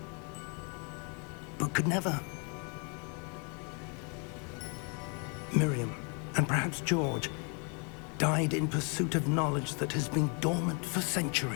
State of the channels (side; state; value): right; quieter; 36.8 dB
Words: but could never. Miriam, and perhaps George, died in pursuit of knowledge that has been dormant for